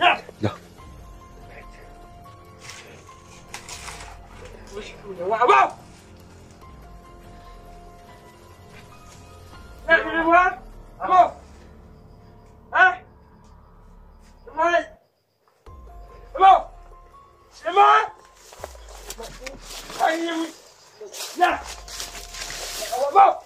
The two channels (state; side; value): identical; both; correlation 1.00